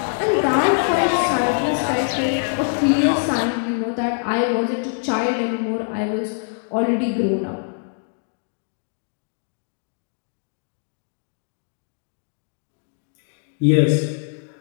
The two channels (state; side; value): silent; right; digital silence